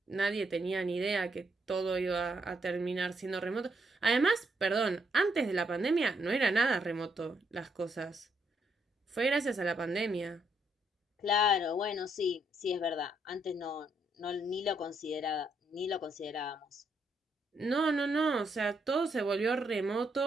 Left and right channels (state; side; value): normal; both; correlation 0.75